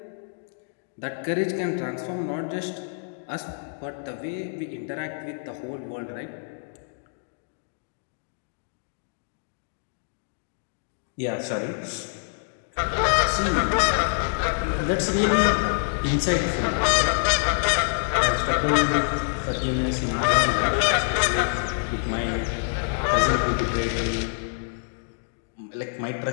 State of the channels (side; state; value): right; silent; digital silence